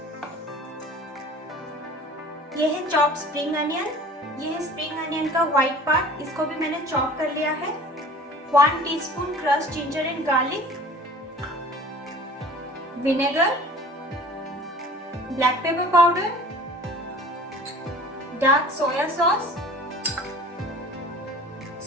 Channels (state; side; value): normal; both; correlation 0.44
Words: ये है चॉप्ड स्प्रिंग अनियन। ये है स्प्रिंग अनियन का व्हाइट पार्ट, इसको भी मैंने चॉप कर लिया है। 1 teaspoon crushed ginger and garlic, vinegar, black pepper powder, dark soya sauce,